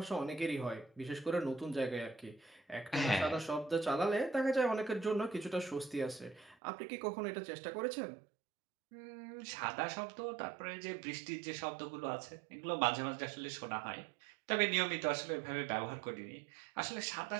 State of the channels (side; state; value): left; drops out; at 6.6 s